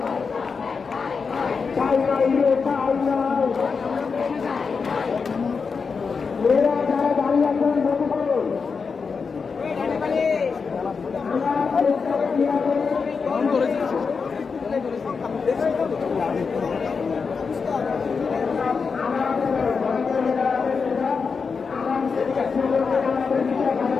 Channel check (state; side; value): quieter; right; 5.2 dB